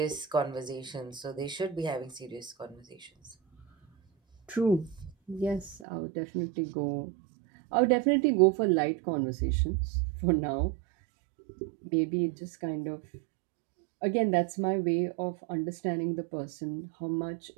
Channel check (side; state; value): left; drops out; at 5.9 s